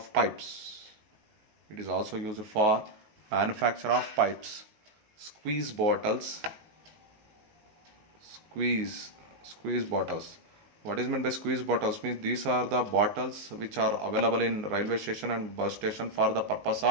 pipes. It is also used for manufacture of pipes. Squeeze bottles. Squeeze bottles. What is meant by squeeze bottles? Means these are the bottles which are available in railway station and bus station for the purpose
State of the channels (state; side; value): late; left; 19 ms